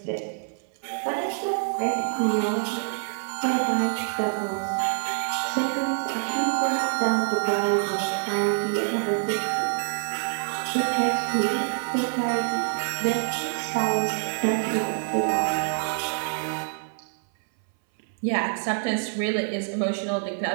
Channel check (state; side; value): silent; left; 58 dB below the other